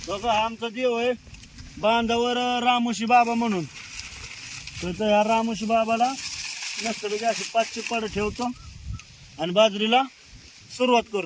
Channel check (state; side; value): identical; both; correlation 1.00